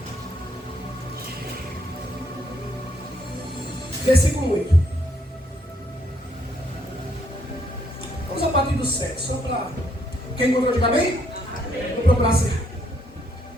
Versículo 8. Vamos a partir do 7, só para... Quem encontrou, diga amém? Vou procurar ser.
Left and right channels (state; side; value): normal; both; correlation 0.72